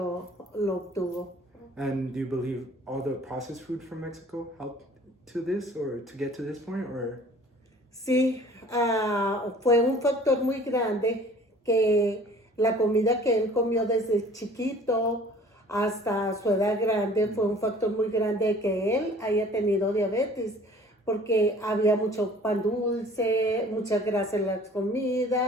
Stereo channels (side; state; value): both; normal; correlation 0.50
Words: lo obtuvo. And do you believe all the processed food from Mexico helped to this or to get to this point or? Sí, fue un factor muy grande que la comida que él comió desde chiquito hasta su edad grande fue un factor muy grande de que él haya tenido diabetes, porque había mucho pan dulce, mucha grasa en la